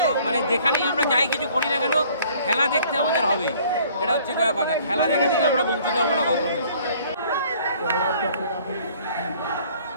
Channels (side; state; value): both; inverted; correlation -0.56